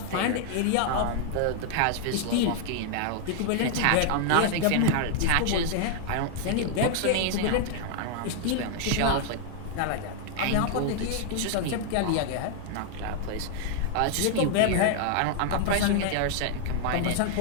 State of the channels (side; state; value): both; different; correlation 0.00